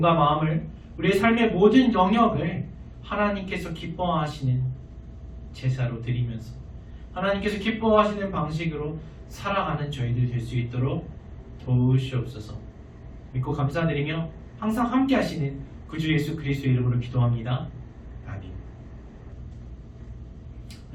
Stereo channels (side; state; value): both; identical; correlation 1.00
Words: 마음을, 우리의 삶의 모든 영역을 하나님께서 기뻐하시는 제사로 드리면서 하나님께서 기뻐하시는 방식으로 살아가는 저희들 될 수 있도록 도우시옵소서. 믿고 감사드리며 항상 함께 하시는 구주 예수 그리스도의 이름으로 기도합니다. 아멘.